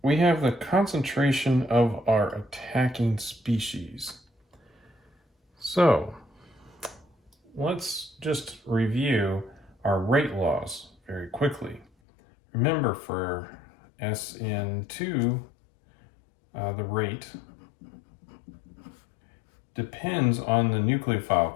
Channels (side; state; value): right; drops out; at 11.9 s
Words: we have the concentration of our attacking species. So let's just review our rate laws very quickly. Remember, for SN2, the rate depends on the